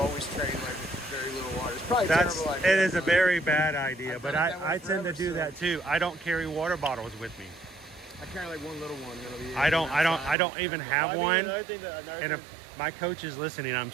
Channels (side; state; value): left; drops out; at 10.4 s